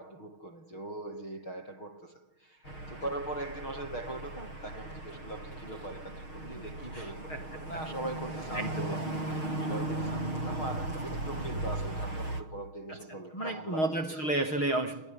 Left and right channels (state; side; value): late; right; 6.4 ms